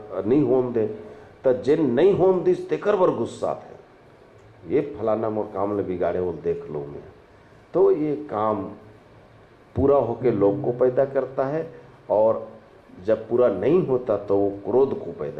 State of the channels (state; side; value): identical; both; correlation 1.00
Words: नहीं होन दे, तो जे नहीं होन दिस तेकर बर गुस्सा थे, ये फलाना मोर काम ले बिगाड़े वो देख लो मैं। तो ये काम पूरा होके लोभ को पैदा करता है, और जब पूरा नहीं होता तो वो क्रोध को